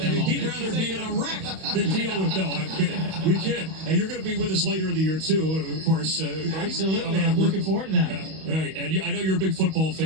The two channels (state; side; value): late; left; 31 ms